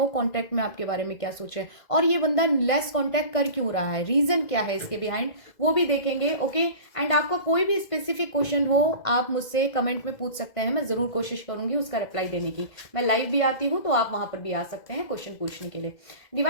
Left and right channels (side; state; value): right; late; 2.0 ms